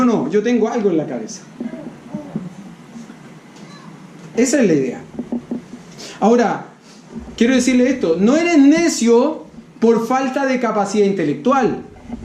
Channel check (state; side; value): identical; both; correlation 1.00